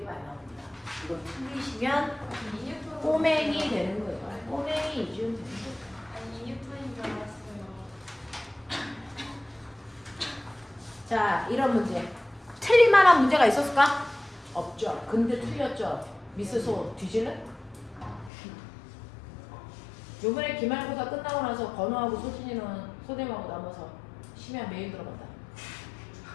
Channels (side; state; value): right; drops out; at 18.3 s